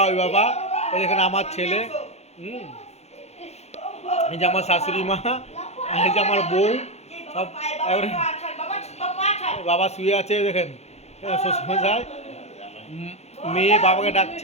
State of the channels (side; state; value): right; late; 0.31 ms